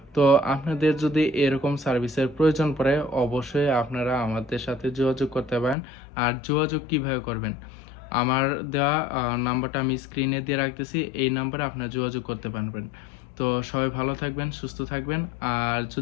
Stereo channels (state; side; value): drops out; right; at 5.8 s